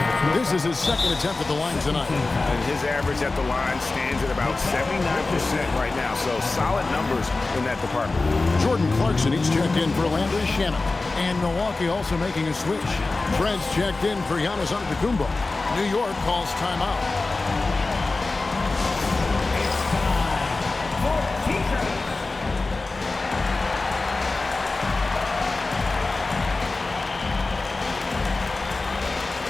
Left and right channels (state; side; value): quieter; right; 3.5 dB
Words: This is his second attempt at the line tonight. And his average at the line stands at about 79% right now, so solid numbers in that department. Jordan Clarkson, he's checked in for Landry Shamet. And Milwaukee also making a switch. Trent's checked in for Giannis Antetokounmpo. New York calls timeout.